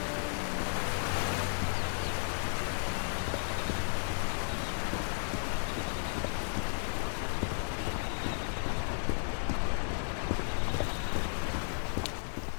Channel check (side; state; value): right; silent; digital silence